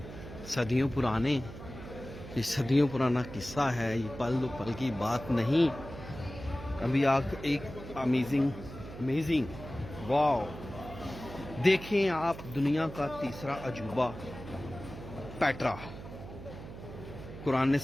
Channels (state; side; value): noise; right; hum, 13 dB below the sound